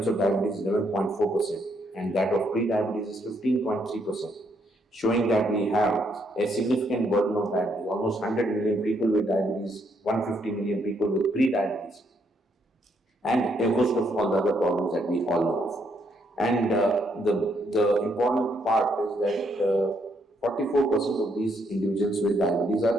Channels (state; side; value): normal; both; correlation 0.73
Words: of diabetes is 11.4%, and that of pre-diabetes is 15.3%. Showing that we have a significant burden of diabetes, almost 100 million people with diabetes, 150 million people with pre-diabetes, and a host of all the other problems that we all know of. And the important part is that 44% of these individuals with diabetes